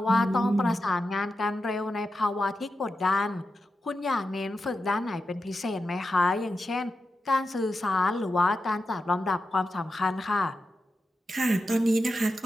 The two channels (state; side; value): normal; both; correlation 0.90